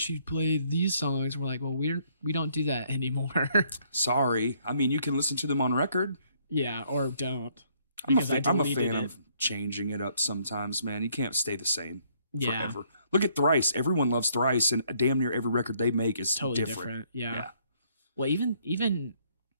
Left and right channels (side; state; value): both; inverted; correlation -0.67